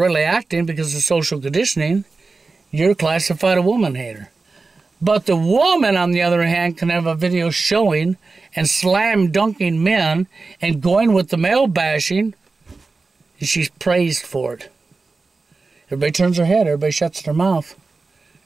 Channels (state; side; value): quieter; left; 3.9 dB